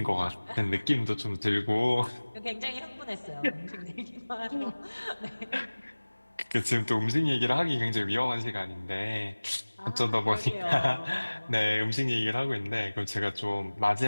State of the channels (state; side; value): inverted; both; correlation -1.00